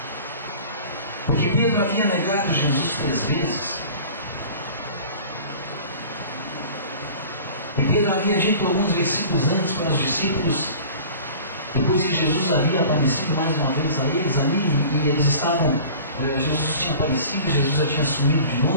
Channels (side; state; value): both; inverted; correlation -0.42